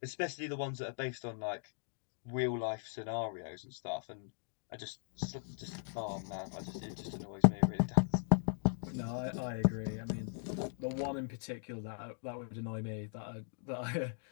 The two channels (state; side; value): silent; right; digital silence